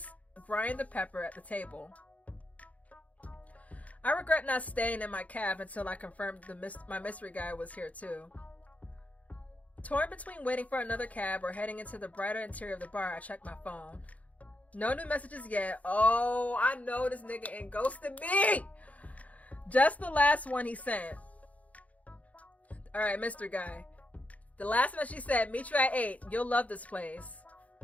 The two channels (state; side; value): late; right; 0.070 ms